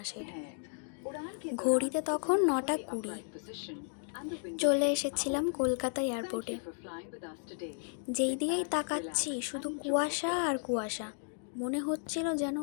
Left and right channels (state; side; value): silent; right; 55 dB below the other